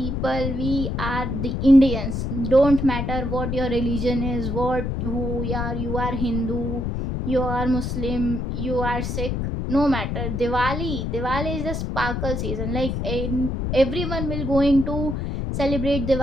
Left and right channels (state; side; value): noise; left; rumble, 2 dB below the sound